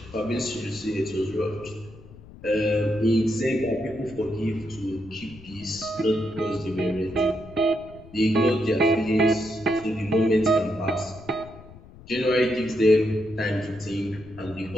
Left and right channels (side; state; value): left; noise; rumble, 19 dB below the sound